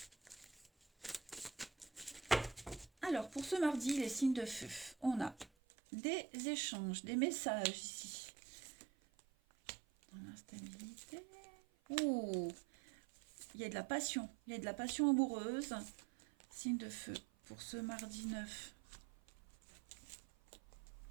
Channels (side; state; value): left; drops out; at 5.5 s